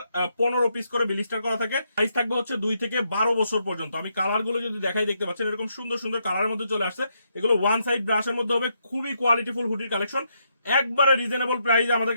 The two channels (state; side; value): inverted; both; correlation -0.78